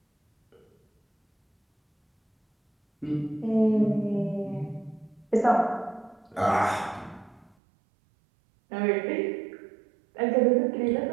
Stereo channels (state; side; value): drops out; left; at 7.5 s